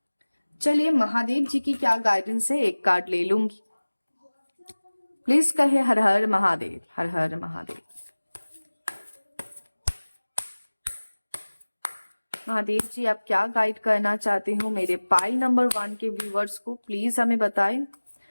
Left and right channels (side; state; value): both; inverted; correlation -1.00